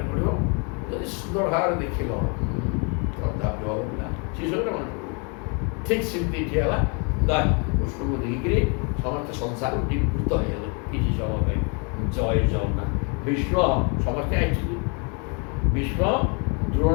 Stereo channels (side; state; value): right; quieter; 35.2 dB